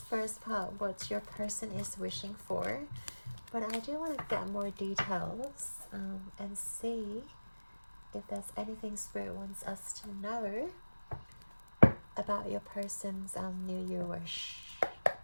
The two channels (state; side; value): inverted; both; correlation -1.00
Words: first part what your person is wishing for. But I do want to get more details and see if there's anything Spirit wants us to know about your person's New Year wish.